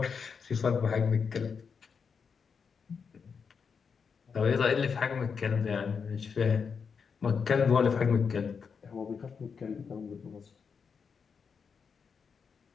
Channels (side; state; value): right; quieter; 6.0 dB